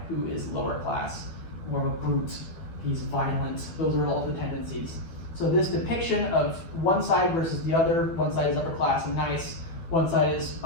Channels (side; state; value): right; late; 12 ms